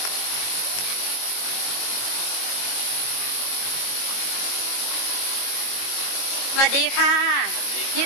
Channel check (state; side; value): late; right; 22 ms